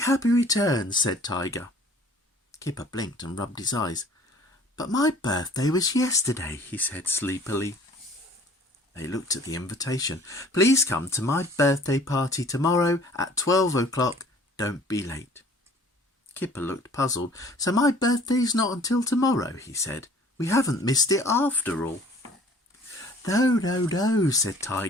returns," said Tiger. Kipper blinked and rubbed his eyes. "But my birthday was yesterday," he said sleepily. They looked at the invitation. "Please come to my birthday party tomorrow at 12 o'clock. Don't be late." Kipper looked puzzled. "So my birthday's not until tomorrow," he said. "We haven't missed it after all." No, said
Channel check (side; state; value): both; normal; correlation 0.51